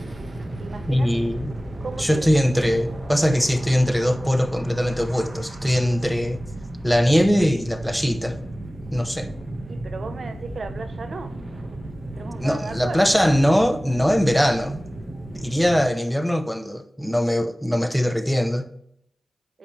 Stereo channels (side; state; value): both; normal; correlation 0.98